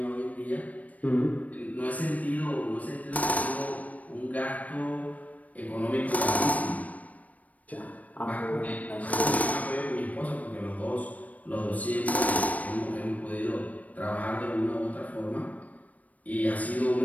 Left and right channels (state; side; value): late; right; 0.070 ms